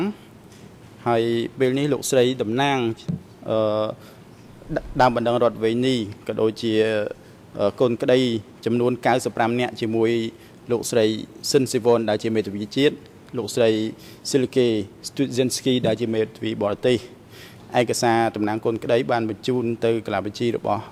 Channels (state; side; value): identical; both; correlation 1.00